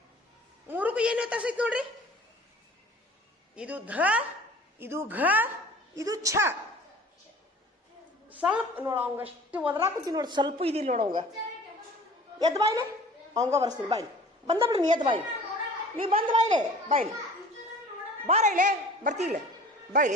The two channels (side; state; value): both; normal; correlation 0.46